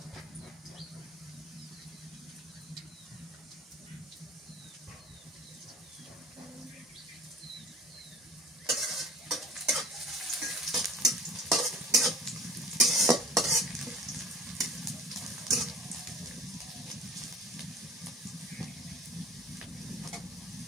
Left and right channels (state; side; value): normal; both; correlation 0.42